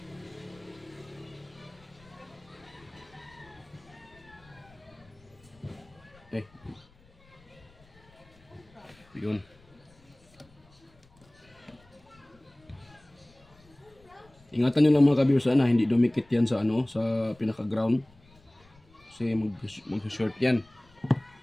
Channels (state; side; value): noise; left; rumble, 28 dB below the sound